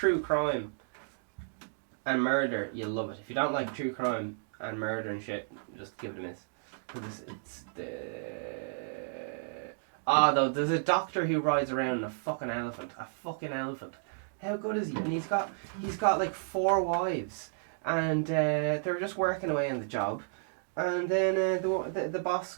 crime and murder, you'll love it. If you don't like true crime and murder and shit, just give it a miss. Because though, there's a doctor who rides around a fucking elephant. A fucking elephant. How good is he? And he's got like 4 wives. And they were just working away on the job. And then the boss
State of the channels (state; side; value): silent; left; digital silence